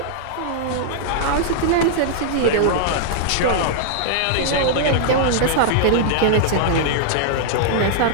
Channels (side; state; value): both; different; correlation -0.01